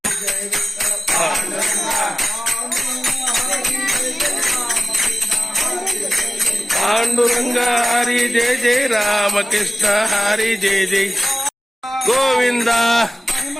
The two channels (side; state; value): both; normal; correlation 0.96